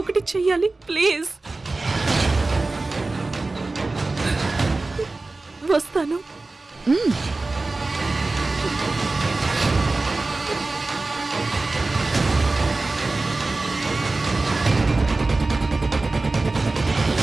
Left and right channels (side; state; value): left; quieter; 3.3 dB